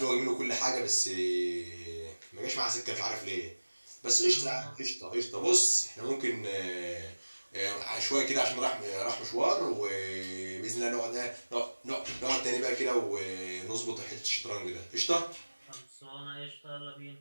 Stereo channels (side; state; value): both; inverted; correlation -1.00